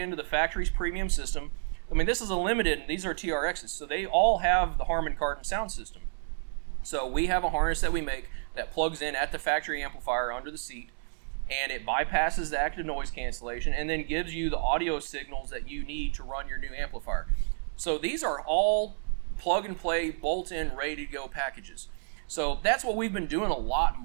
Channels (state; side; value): silent; left; 58 dB below the other